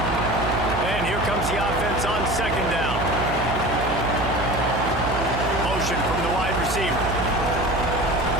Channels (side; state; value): right; noise; hum, 5 dB below the sound